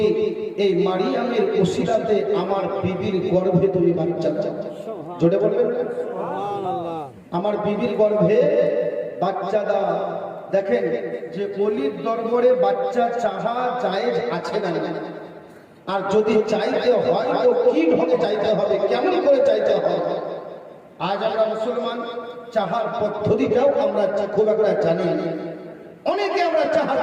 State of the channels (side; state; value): both; identical; correlation 1.00